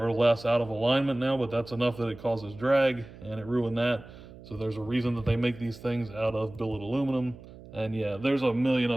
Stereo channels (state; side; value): noise; right; hum, 18 dB below the sound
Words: less out of alignment now, but that's enough that it causes drag, and it ruined that. So there's a reason that they make these things out of billet aluminum. And yeah, there's a million